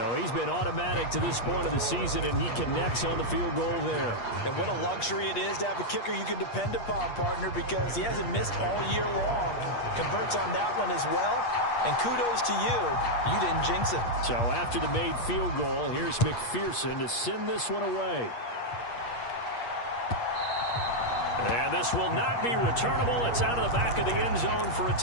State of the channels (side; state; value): right; late; 8.4 ms